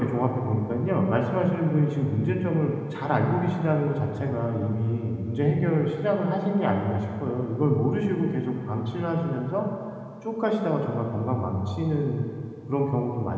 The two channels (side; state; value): both; identical; correlation 1.00